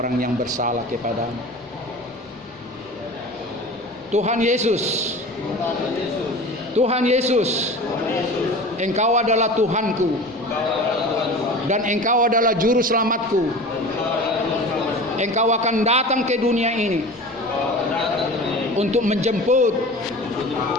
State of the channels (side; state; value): both; normal; correlation 0.36